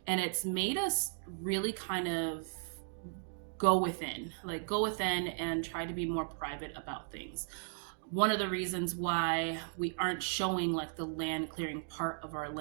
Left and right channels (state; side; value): silent; left; digital silence